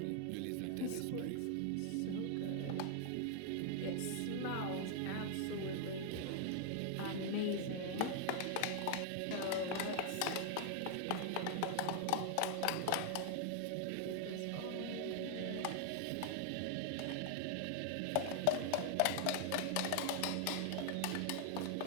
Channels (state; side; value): different; both; correlation 0.00